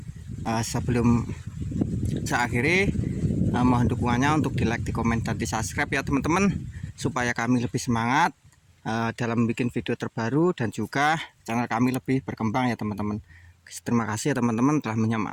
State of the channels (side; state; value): both; identical; correlation 1.00